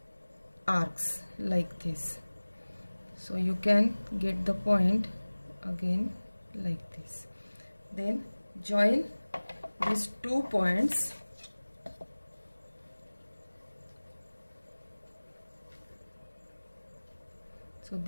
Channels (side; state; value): both; inverted; correlation -1.00